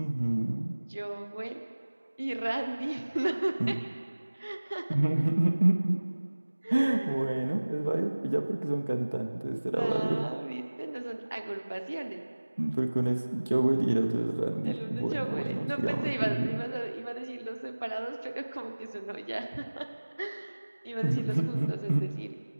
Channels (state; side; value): inverted; both; correlation -1.00